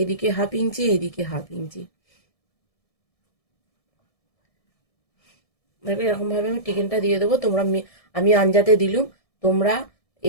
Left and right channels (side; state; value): right; late; 1.7 ms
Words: 1/2 ইঞ্চি, এইদিকে 1/2 ইঞ্চি। দেখো এরকম ভাবে আমি টিকেনটা দিয়ে দেবো। তোমরা আমি আঞ্জাতে দিলুম, তোমরা